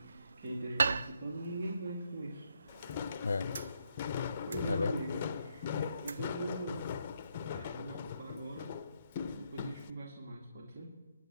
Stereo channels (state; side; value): inverted; both; correlation -0.76